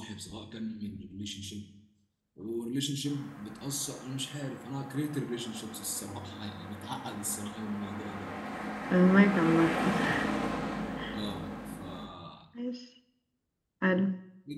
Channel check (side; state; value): both; identical; correlation 1.00